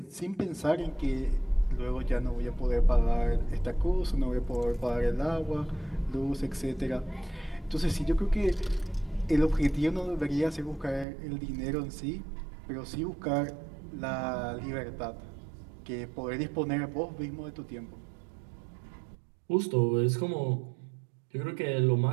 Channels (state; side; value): drops out; left; at 11.1 s